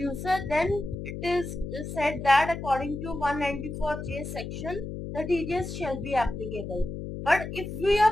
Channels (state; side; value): noise; left; hum, 7 dB below the sound